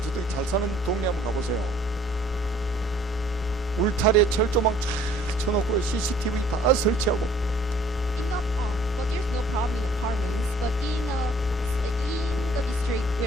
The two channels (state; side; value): normal; both; correlation 0.57